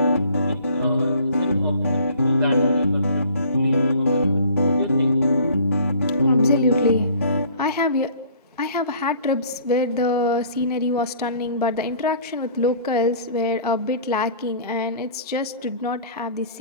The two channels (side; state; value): both; inverted; correlation -0.51